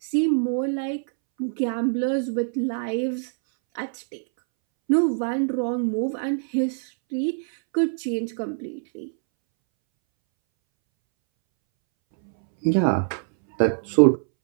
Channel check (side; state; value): left; silent; 62 dB below the other